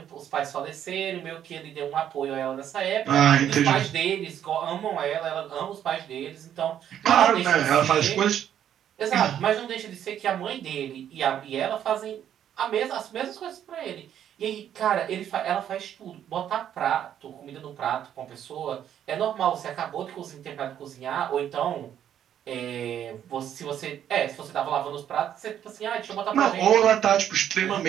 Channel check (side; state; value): left; quieter; 10.0 dB